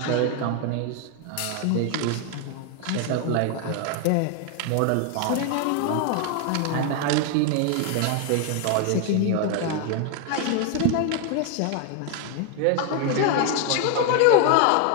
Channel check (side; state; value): both; different; correlation 0.01